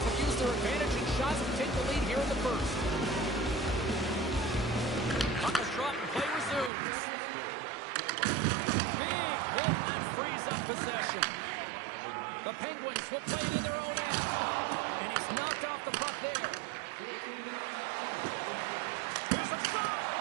have used their advantage in shots to take the lead here in the first. Puck is dropped and play resumes. Big hit that frees up possession. The Penguins will play it in their own end. And he's knocked off the puck there. Here's a shot.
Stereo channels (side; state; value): left; drops out; at 6.7 s